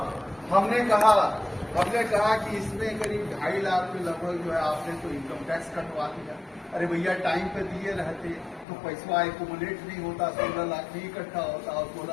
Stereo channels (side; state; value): right; drops out; at 8.7 s